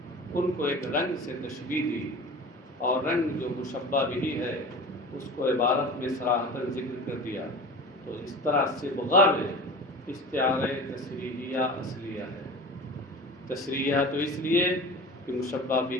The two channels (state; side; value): normal; both; correlation 0.35